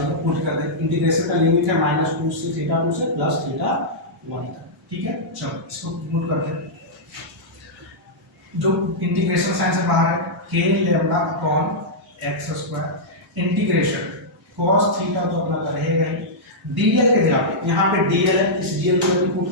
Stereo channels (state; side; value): normal; both; correlation -0.09